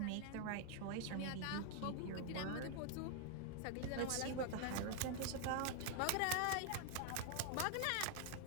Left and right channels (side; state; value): both; different; correlation 0.00